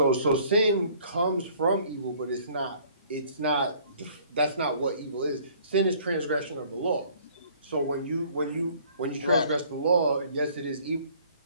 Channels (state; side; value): inverted; both; correlation -0.56